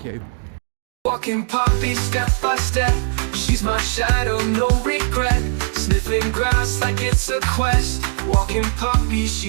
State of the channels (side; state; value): left; silent; 56 dB below the other